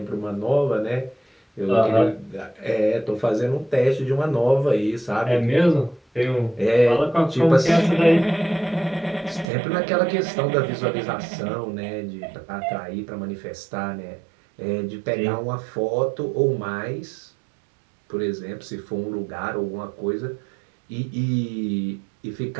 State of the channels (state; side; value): drops out; left; at 9.5 s